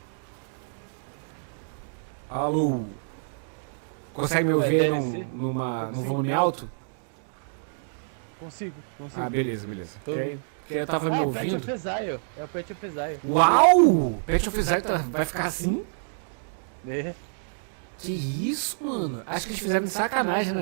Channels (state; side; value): silent; left; digital silence